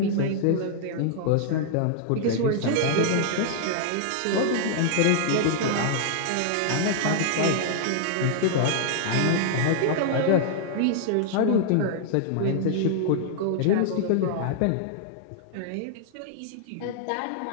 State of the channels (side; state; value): both; different; correlation -0.01